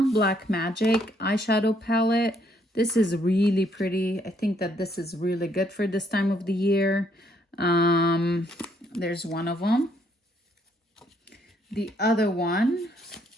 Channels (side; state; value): both; normal; correlation 0.70